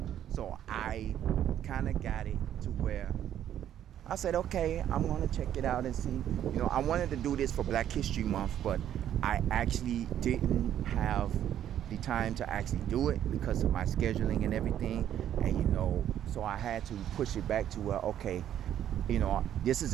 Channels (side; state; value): left; quieter; 10.7 dB